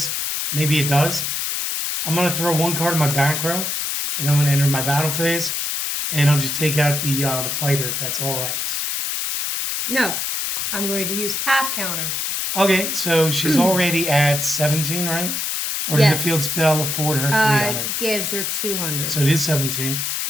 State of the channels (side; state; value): left; noise; hiss, 1 dB below the sound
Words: maybe it does. I'm going to throw one card in my back row, and I'm going to enter my battle phase, and I'll just take out the fighter, if that's all right. No, I'm going to use half counter. Okay, so she's already at 17, right? Or did the field spell afford her 300? Gives her 200. So it is 17.